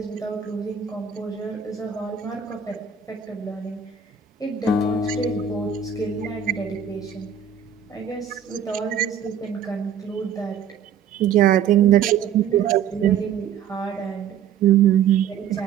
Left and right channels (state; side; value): quieter; left; 8.1 dB